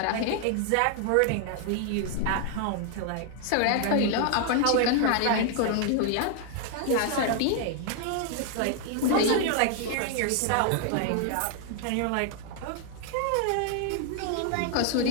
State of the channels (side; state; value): both; different; correlation 0.00